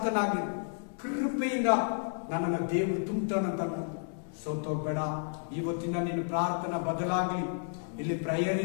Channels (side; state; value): right; silent; 57 dB below the other